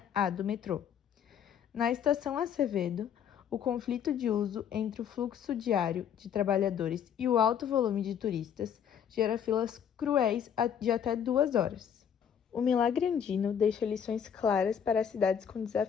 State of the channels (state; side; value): quieter; right; 8.4 dB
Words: A do metrô. Na estação Acevedo, o conflito de uso entre o fluxo diário de trabalhadores e o alto volume de turistas gera filas cruéis de até 2 horas. O milagre andino deixa lições claras para as cidades com